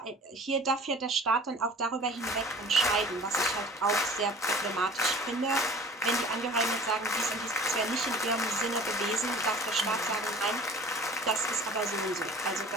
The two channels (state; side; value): normal; both; correlation 0.44